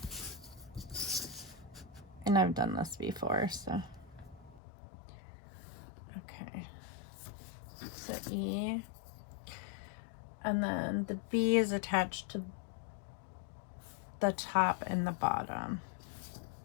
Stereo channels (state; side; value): drops out; right; at 4.6 s